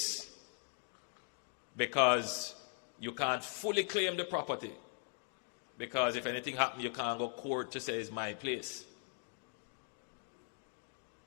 because you can't fully claim the property, because if anything happens, you can't go to court to say it's my place.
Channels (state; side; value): silent; right; 51 dB below the other